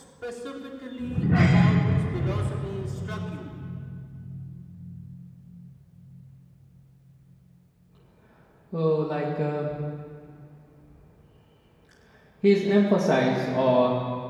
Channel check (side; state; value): both; identical; correlation 1.00